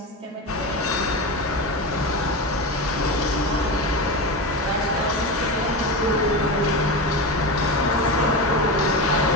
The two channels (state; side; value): normal; both; correlation 0.21